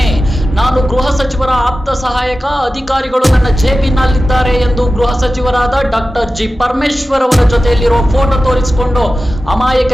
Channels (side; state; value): both; normal; correlation 0.94